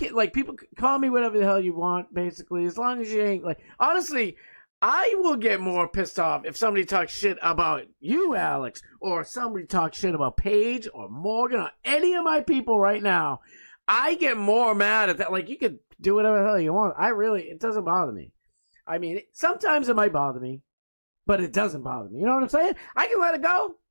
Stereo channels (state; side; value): inverted; both; correlation -1.00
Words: like, people call me whatever the hell you want, basically, as long as you ain't, like, honestly, I will get more pissed off if somebody talks shit about you, Alex, or somebody talks shit about Paige or Morgan or any of my people right now. I get more mad at that. Like, you could do whatever the hell you want. It doesn't bother me. I mean, sometimes it might bother me, but it doesn't bother me. You know what I'm saying? I can let it go.